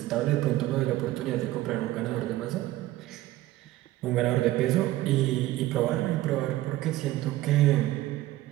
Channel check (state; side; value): quieter; left; 16.1 dB